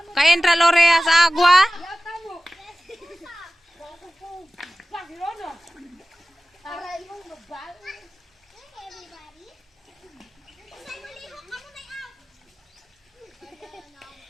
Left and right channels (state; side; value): normal; both; correlation 0.95